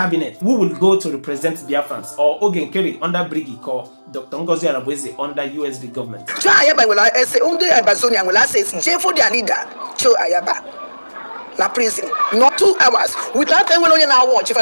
who will go to represent Biafrans, or Ogen Kerry under BRGIE, or Dr. Ngozi Arabweze under USD government. Cho AYABA will say, Ambazonian will say, for their leader, Cho AYABA. Na prison, not 2 hours without anyone on our watch. If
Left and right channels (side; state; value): both; inverted; correlation -1.00